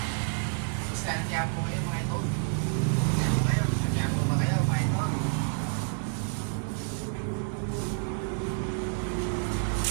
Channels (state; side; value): silent; left; 59 dB below the other